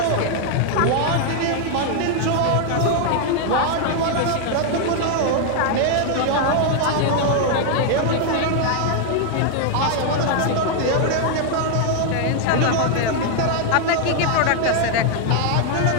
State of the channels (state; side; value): different; both; correlation 0.00